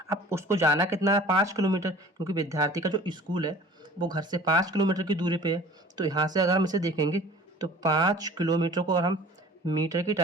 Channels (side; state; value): both; normal; correlation 0.46